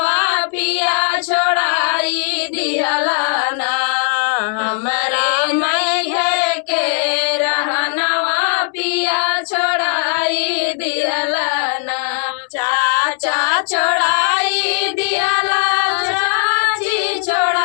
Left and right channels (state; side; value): silent; right; 68 dB below the other